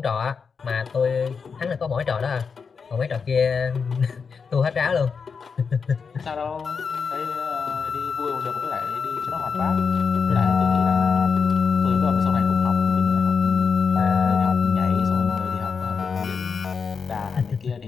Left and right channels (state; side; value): quieter; right; 5.6 dB